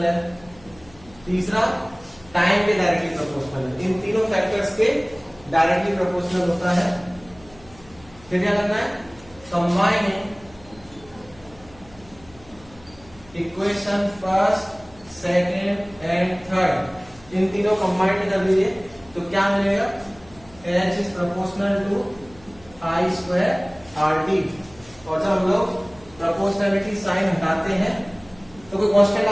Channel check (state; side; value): noise; left; hum, 24 dB below the sound